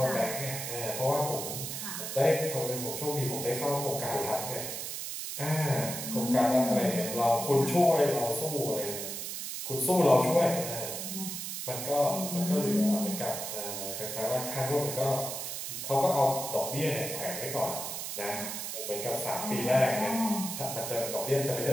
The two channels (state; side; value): noise; right; hiss, 5 dB below the sound